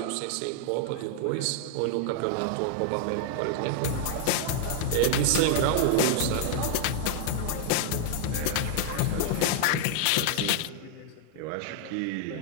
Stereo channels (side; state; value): both; different; correlation 0.00